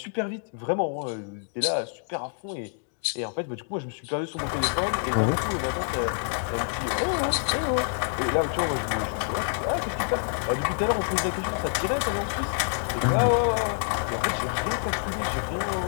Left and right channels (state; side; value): silent; right; 60 dB below the other